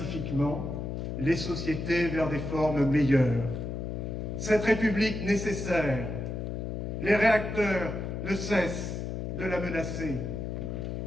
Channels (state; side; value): noise; left; hum, 4 dB below the sound